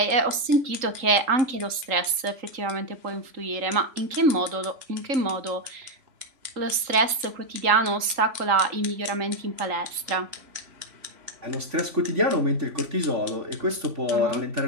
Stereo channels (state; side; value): late; left; 3.8 ms